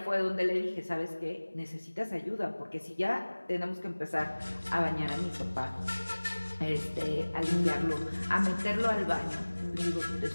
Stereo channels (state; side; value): inverted; both; correlation -1.00